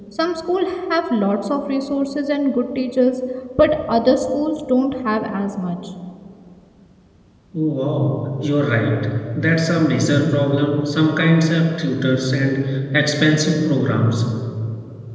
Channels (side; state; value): both; identical; correlation 1.00